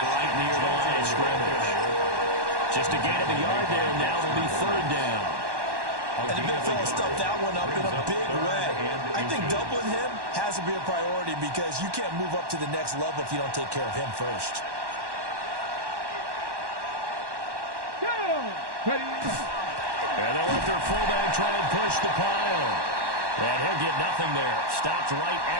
right near the line of scrimmage. Just a gain of a yard there. Now will be third down. And the big fella stuffed that one up in a big way. I think doubling him has to be a priority because you can't move up to the next level if you don't take care of him first. And they'll let their fullback try and push the pile. And he'll get nothing there. Stopped right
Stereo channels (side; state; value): left; late; 1.1 ms